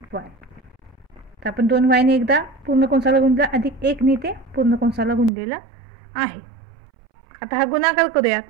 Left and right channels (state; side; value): drops out; left; at 5.3 s